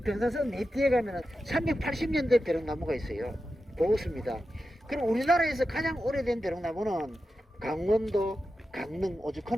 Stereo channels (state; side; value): normal; both; correlation 0.91